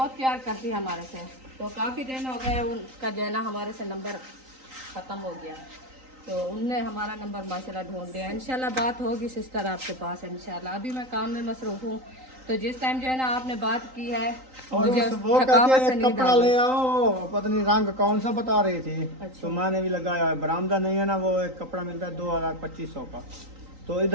प्यार करती है हमारे से। तो काफ़ी दिन हो गए उनका जो है ना हमारे से नंबर ख़त्म हो गया, तो उनने हमारा नंबर माशाल्लाह ढूंढ लिया। इंशाल्लाह बात होगी सिस्टर आपके पास इंशाल्लाह। अभी मैं काम में मसरूफ हूँ, तो जिस टाइम जो है ना आपने बात की है और मुझे वो थकावट कहते से हैं नींद कपड़ा आ ले गई। आओ, पता नहीं रंग कौन सा बता रही थी, अच्छा। तो मैंने भी लगाया है। बरामदा नहीं है ना, वो एक कपड़ा मिलता है 2200 का, तो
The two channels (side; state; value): left; late; 3.9 ms